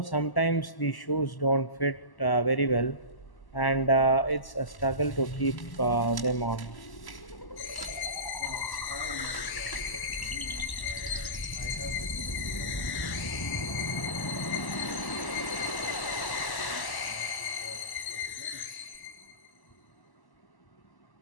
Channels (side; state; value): right; late; 1.1 ms